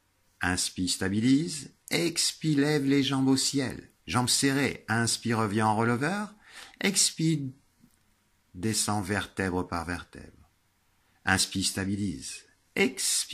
Inspire, stabilise. Expire, lève les jambes au ciel. Jambes serrées. Inspire, revient en releveur. Expire, descend vertèbre par vertèbre. Inspire, stabilise.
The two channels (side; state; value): both; identical; correlation 1.00